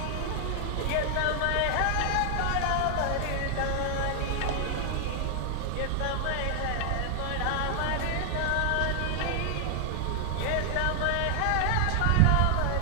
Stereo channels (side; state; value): both; different; correlation 0.00